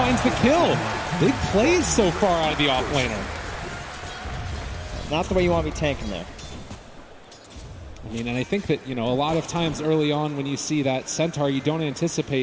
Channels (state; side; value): identical; both; correlation 1.00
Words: the kill. Big plays so far out of the offlaner. Not the way you want to be tanking there. I mean, and I think that, a lot of times early on when you see that Centaur, you don't